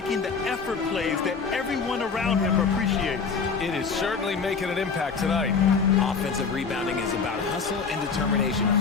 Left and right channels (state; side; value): quieter; right; 5.3 dB